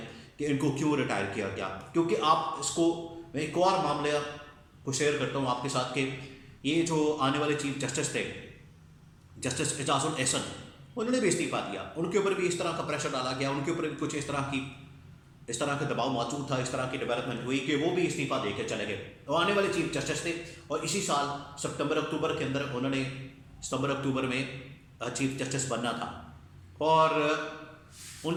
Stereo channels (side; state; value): both; identical; correlation 1.00